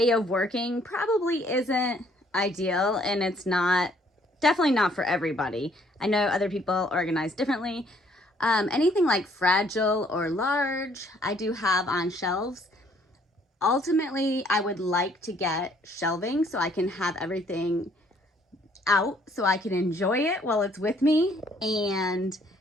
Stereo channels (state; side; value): normal; both; correlation 0.63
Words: of working probably isn't ideal, and it's definitely not for everybody. I know other people organize differently. Anything like fragile or large, I do have on shelves. Ultimately, I would like to get shelving so I can have everything out so I can enjoy it while it's with me. And